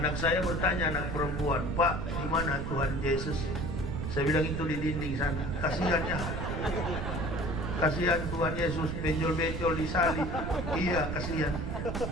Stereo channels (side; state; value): right; noise; rumble, 3 dB below the sound